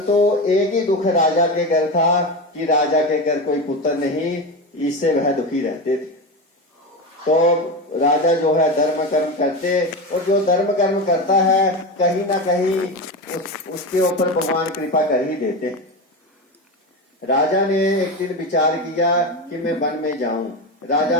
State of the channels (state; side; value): normal; both; correlation 0.20